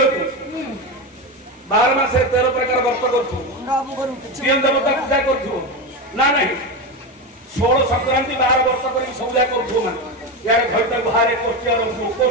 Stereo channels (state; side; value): normal; both; correlation 0.17